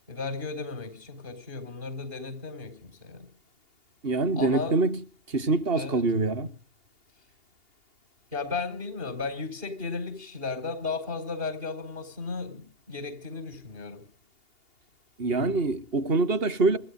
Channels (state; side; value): late; left; 2.8 ms